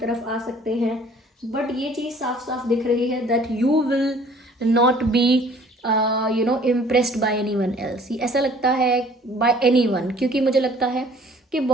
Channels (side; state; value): both; normal; correlation 0.54